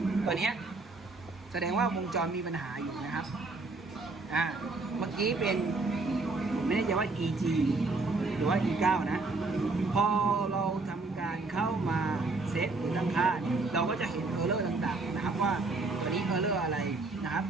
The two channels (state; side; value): quieter; left; 3.5 dB